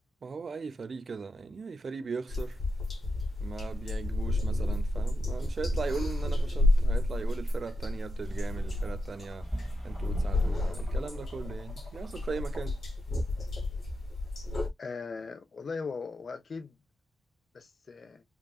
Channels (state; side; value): normal; both; correlation 0.85